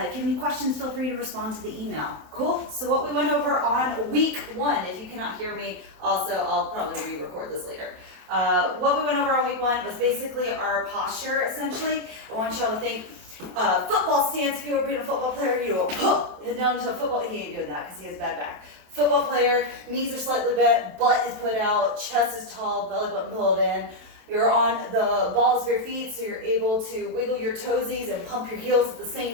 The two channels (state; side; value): late; left; 27 ms